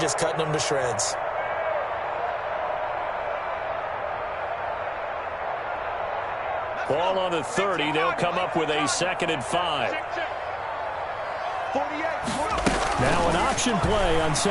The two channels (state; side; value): identical; both; correlation 1.00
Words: cutting them to shreds. Ball on the 30. They'll come up with a 2nd and 5. Now an option play on